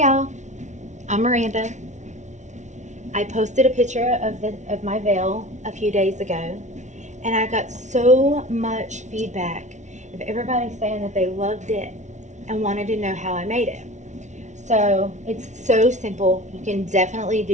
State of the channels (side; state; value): left; late; 0.34 ms